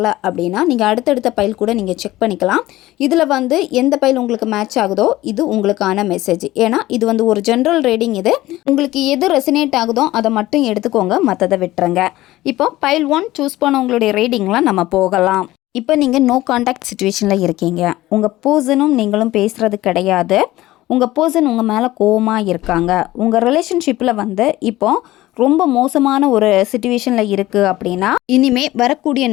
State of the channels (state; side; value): quieter; right; 16.7 dB